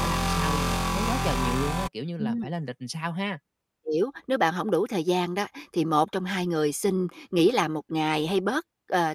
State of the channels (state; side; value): identical; both; correlation 1.00